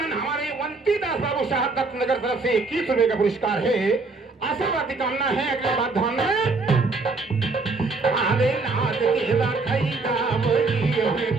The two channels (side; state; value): left; quieter; 3.7 dB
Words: हमारे वंती दास बाबू साहब दत्तनगर तरफ से 21 रुपए का पुरस्कार है आशीर्वाद की कामना है अगले बात ध्यान में अरे नाच के रखैया वही है